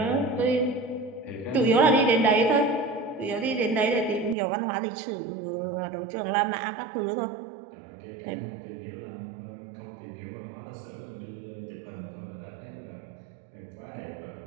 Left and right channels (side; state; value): left; drops out; at 4.4 s